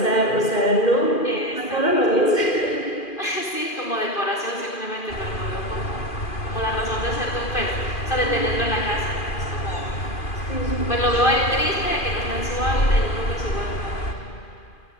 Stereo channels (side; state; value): right; late; 2.4 ms